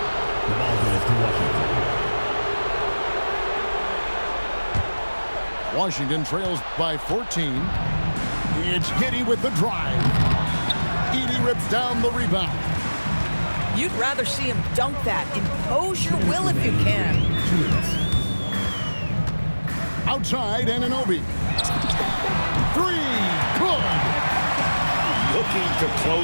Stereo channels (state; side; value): inverted; both; correlation -1.00